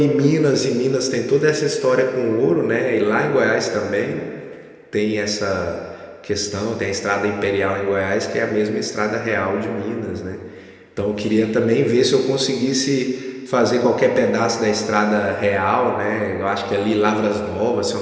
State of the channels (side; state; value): both; identical; correlation 1.00